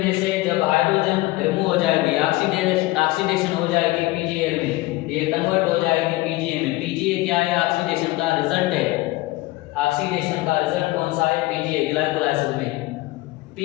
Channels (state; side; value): quieter; right; 19.8 dB